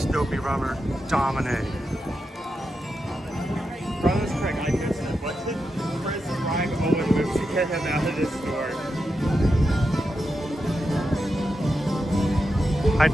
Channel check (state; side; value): normal; both; correlation 0.87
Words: Dopey Rummer, dominate. Brother's correct, I missed it. What did Chris and Owen move to get him out of this store? I